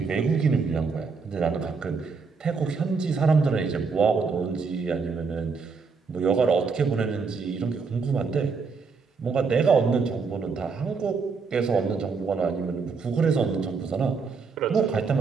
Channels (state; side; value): quieter; left; 5.0 dB